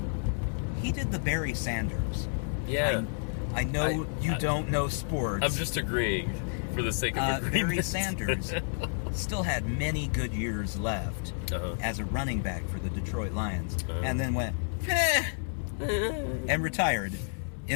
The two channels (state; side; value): silent; right; digital silence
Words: he did the Barry Sanders. Yeah. I know you don't know sports. I'm just agreeing for the sake of agreement. Barry Sanders still had many good years left as a running back for the Detroit Lions, and then went and retired